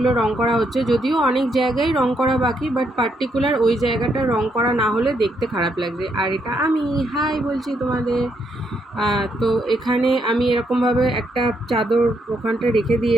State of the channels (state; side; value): normal; both; correlation 0.76